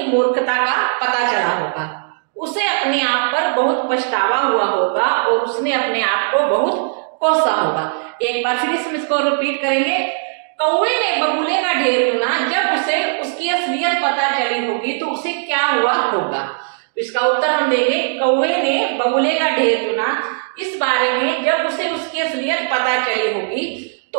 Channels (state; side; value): silent; left; digital silence